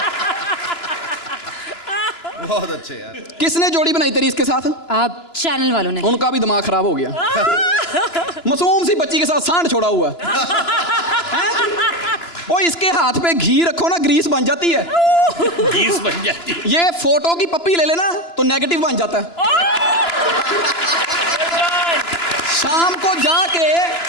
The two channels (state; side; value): late; right; 2.9 ms